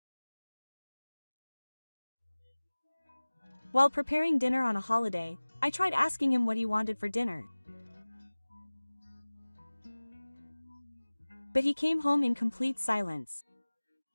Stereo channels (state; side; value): inverted; both; correlation -1.00